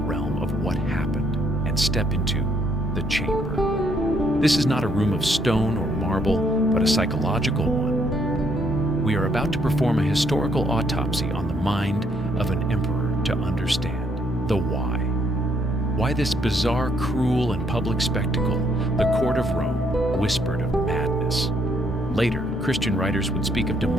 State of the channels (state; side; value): normal; both; correlation 0.71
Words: of what happened and step into the chamber. This is not a room of stone or marble, but a psychological one. We are about to perform a historical autopsy on the mind of an emperor to understand the why. Why this bizarre, cruel, and public spectacle, the court of Rome, whispered of madness. Later, Christian writers would speak of